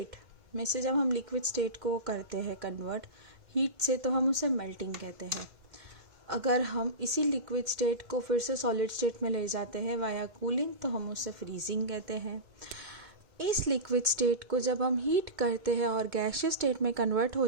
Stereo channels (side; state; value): left; late; 1.9 ms